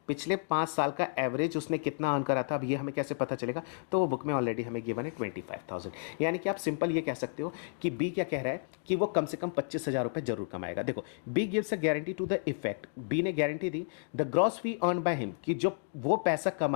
पिछले 5 साल का एवरेज उसने कितना अर्न करा था, अब ये हमें कैसे पता चलेगा? तो वो बुक में ऑलरेडी हमें गिवन है 25,000। यानी कि आप सिंपल ये कह सकते हो कि बी क्या कह रहा है कि वो कम से कम 25,000 रुपए जरूर कमाएगा। देखो B gives a guarantee to the effect, B ने गारंटी दी the gross fee earn by him, कि जो वो पैसा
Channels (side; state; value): right; silent; digital silence